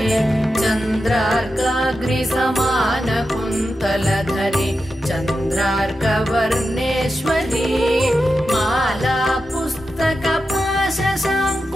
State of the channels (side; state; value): both; normal; correlation 0.90